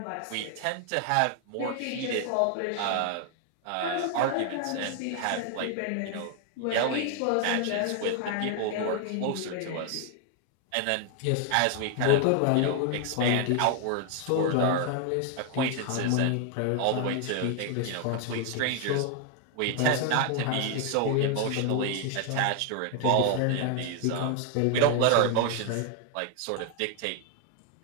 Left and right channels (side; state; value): both; different; correlation 0.00